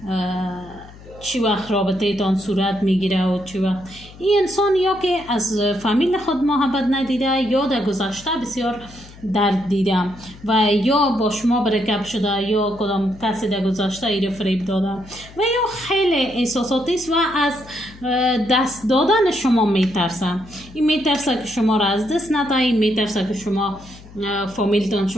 چی وقت رابطه تان صورت میگیره و چی وقت. این انسان یا که از فامیل خود محبت ندیده یا در گذشته بسیار درد دیده و یا با شما برکب شده یا کدام کسی در گذشته ایره فریب داده و یا خیلی احساساتی است و از دست دادن شما میترسه. این میترسه که شما را از دست نده، این میترسه که شما فامیلتان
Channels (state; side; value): noise; left; hum, 20 dB below the sound